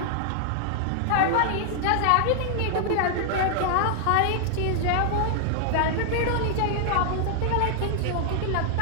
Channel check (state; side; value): different; both; correlation 0.00